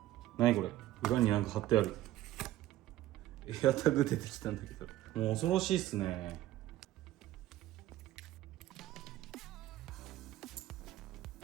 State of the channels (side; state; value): left; quieter; 14.6 dB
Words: 何これ？裏になんか貼ってある。エアタグ出てきたんだけど、もう恐ろしいっすね。